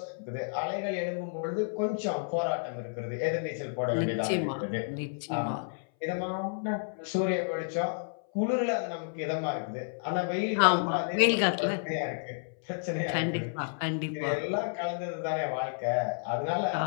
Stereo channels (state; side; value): silent; right; 57 dB below the other